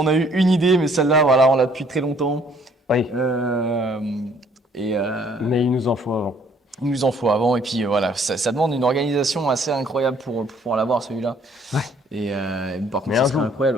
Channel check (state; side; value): normal; both; correlation 0.61